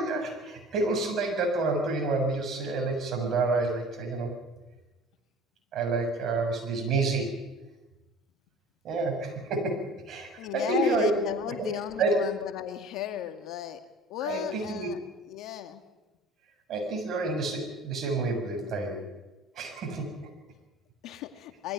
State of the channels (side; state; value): both; normal; correlation 0.43